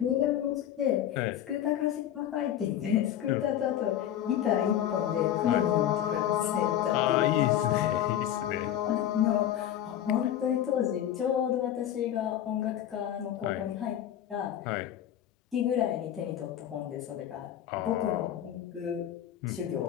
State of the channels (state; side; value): quieter; right; 11.0 dB